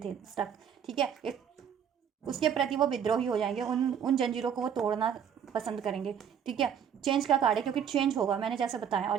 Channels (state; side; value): quieter; left; 8.2 dB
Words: स्टक, ठीक है, एक उसके प्रति वो विद्रोही हो जाएंगे, उन जंजीरों को वो तोड़ना पसंद करेंगे, ठीक है। चेंज का कार्ड है, क्योंकि चेंज होगा, मैंने जैसे बताया,